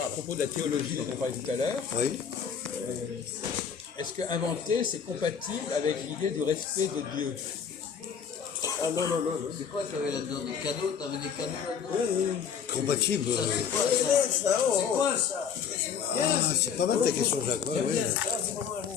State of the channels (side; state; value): right; quieter; 7.1 dB